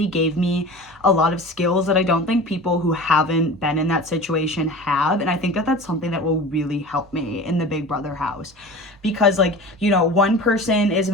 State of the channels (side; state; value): both; normal; correlation 0.36